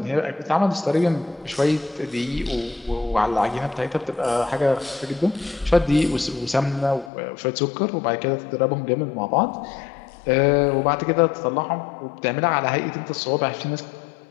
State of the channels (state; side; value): drops out; right; at 7.1 s